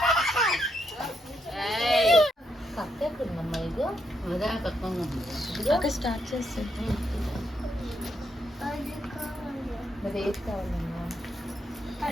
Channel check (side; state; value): both; normal; correlation 0.78